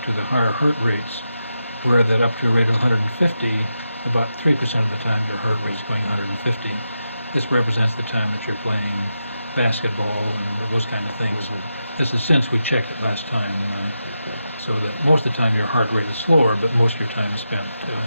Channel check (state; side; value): inverted; both; correlation -0.88